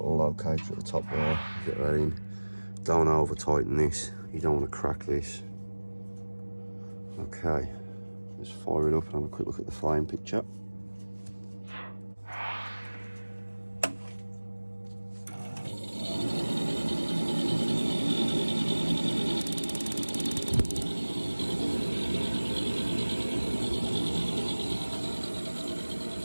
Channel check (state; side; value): inverted; both; correlation -1.00